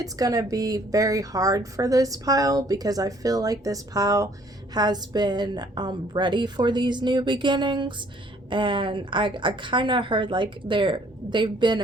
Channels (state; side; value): normal; both; correlation 0.61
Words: going to be very hard for this pile, because I feel like this pile has been ready for these new beginnings. And I kind of heard like they've been